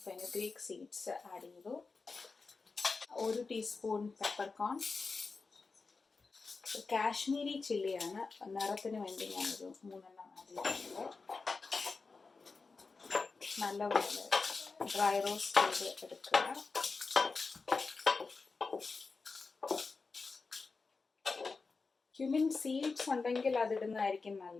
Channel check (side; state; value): right; quieter; 4.3 dB